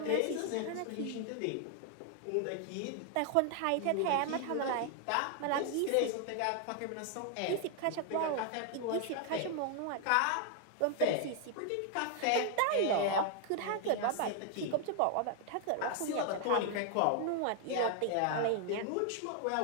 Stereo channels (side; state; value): both; different; correlation 0.00